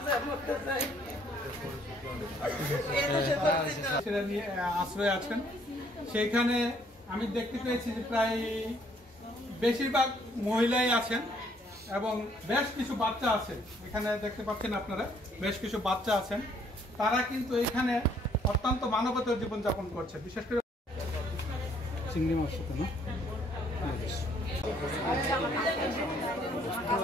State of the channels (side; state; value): both; normal; correlation 0.64